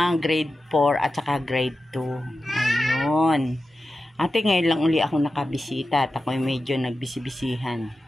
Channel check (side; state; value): both; normal; correlation 0.92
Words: Grade 4 at saka grade 2. Ayun. Ate, ngayon lang uli ako nakabisita at ako medyo nagbisibisihan.